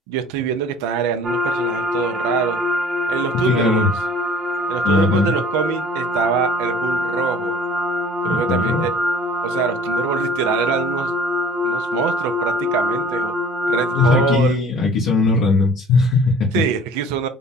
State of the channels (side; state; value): both; normal; correlation 0.49